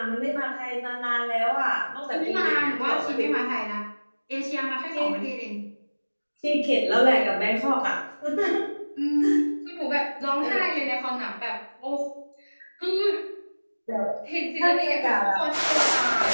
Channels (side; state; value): both; inverted; correlation -1.00